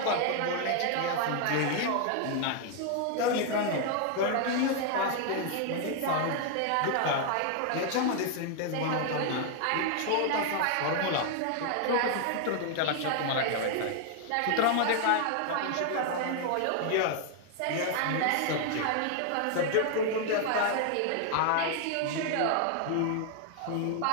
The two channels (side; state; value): both; different; correlation 0.00